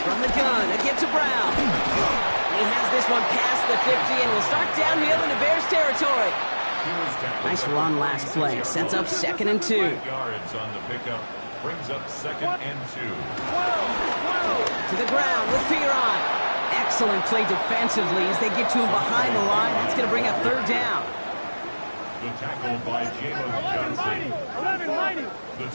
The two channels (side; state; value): both; inverted; correlation -1.00